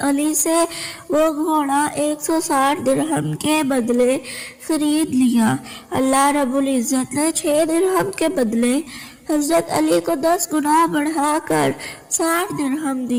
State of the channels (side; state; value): both; identical; correlation 1.00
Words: علی سے وہ گھوڑا 160 درہم کے بدلے خرید لیا۔ اللہ رب العزت نے 6 درہم کے بدلے حضرت علی کو 10 گنا بڑھا کر 60 درہم